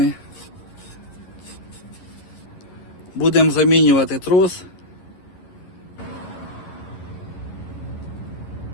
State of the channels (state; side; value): late; right; 11 ms